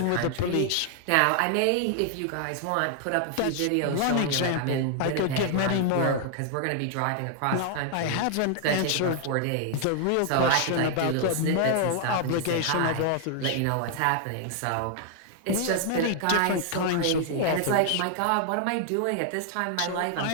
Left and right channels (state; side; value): different; both; correlation 0.00